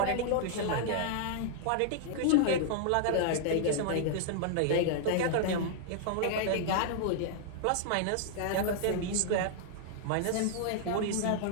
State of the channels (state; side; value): different; both; correlation -0.01